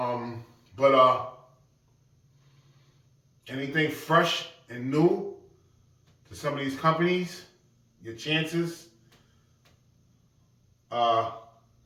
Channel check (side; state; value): both; identical; correlation 1.00